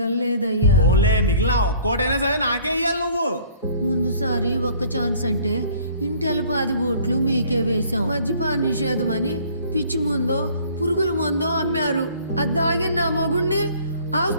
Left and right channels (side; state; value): both; inverted; correlation -0.53